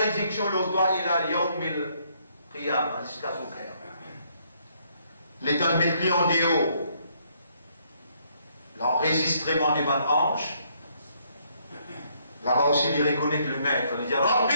le doigt, il a yawmil qiyam, jusqu'à son cœur. L'État met lui en déo, l'enregistrement des bonnes hanches, là-bas aussi, il reconnaît que le maître, il dit,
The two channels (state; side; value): inverted; both; correlation -0.70